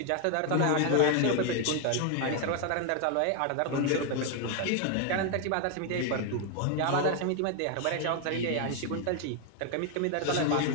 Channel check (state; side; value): different; both; correlation 0.01